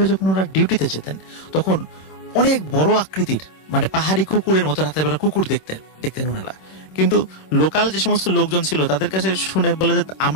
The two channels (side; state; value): right; late; 26 ms